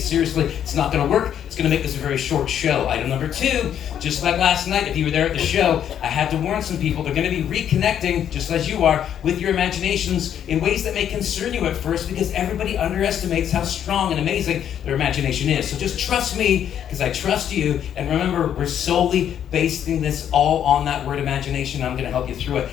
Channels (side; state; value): right; quieter; 9.6 dB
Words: seriously, it's not going to work. It's going to make this a very short show. Item number two, just like last night, if you were there at the show, I had to warn some people they're going to be reconnecting, just as you are, with your imaginations in ways that may concern you at first, because everybody underestimates how strong and amazing their imagination is. So just trust me, because I trust you. And remember, we're solely basing this all on that word imagination. I'm going to help you through it.